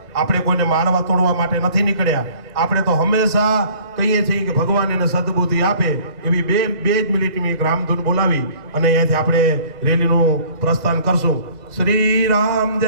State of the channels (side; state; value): left; late; 2.0 ms